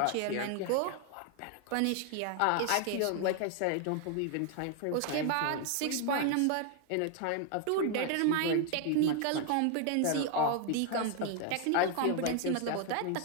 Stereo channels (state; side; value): different; both; correlation 0.00